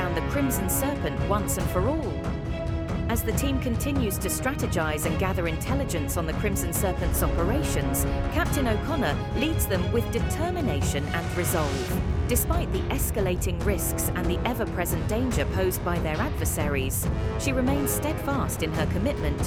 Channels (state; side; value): identical; both; correlation 1.00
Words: the Crimson Serpent once and for all. As the team continues to strategize and gather intelligence on the Crimson Serpent's operations, Captain O'Connor leads them with determination and resolve. Despite the escalating risks and the ever-present danger posed by their adversaries, she remains steadfast in her commitment